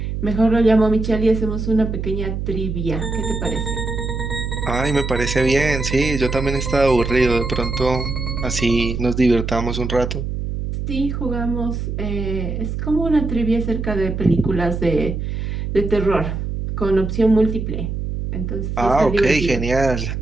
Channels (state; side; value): noise; right; hum, 4 dB below the sound